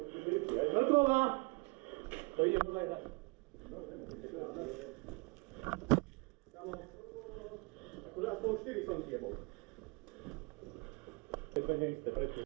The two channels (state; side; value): quieter; left; 28.7 dB